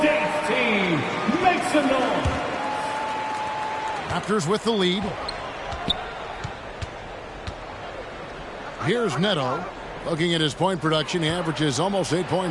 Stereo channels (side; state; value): both; identical; correlation 1.00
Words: dance team. Make some noise. Raptors with the lead. Here's Neto. Looking at his point production, he averages almost 8